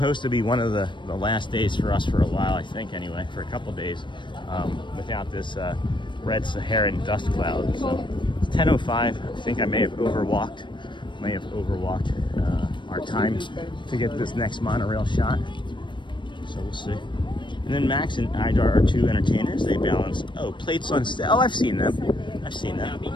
to be one of the last days for us for a while, I think, anyway, for a couple days, without this red Saharan dust cloud. So it's 10:05. I think I may have overwalked our time to get this next monorail shot. So we'll see. And then Max and Idar are two entertainers. They balance, plates on stage. Oh, I've seen them.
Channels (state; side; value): late; right; 0.23 ms